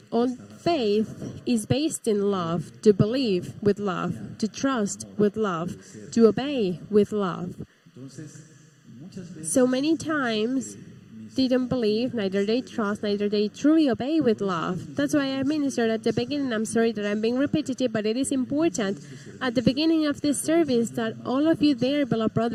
all faith is based in love, to believe with love, to trust with love, to obey with love. So many times, they don't believe, neither they trust, neither they truly obey with love. That's why I ministered at the beginning. I'm sorry that I'm being repetitive, but it is important at the beginning of this service that all of you there, beloved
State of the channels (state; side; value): identical; both; correlation 1.00